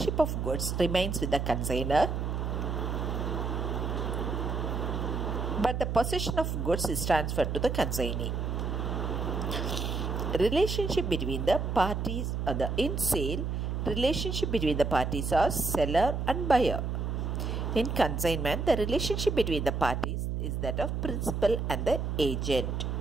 of goods remains with the consignor, but the possession of goods is transferred to the consignee. Relationship between the parties in sale, relationship between the parties are seller and buyer. In consignment, the relationship between the parties is that of principal and the agent.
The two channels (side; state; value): right; noise; hum, 1 dB below the sound